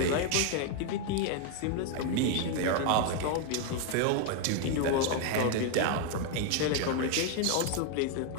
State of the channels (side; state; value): both; different; correlation 0.00